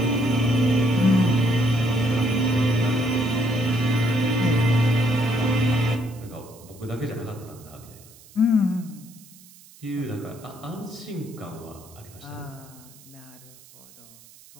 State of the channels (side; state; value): right; noise; hiss, 23 dB below the sound